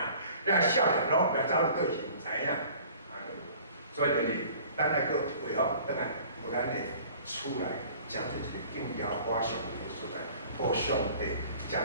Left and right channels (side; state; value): both; inverted; correlation -0.49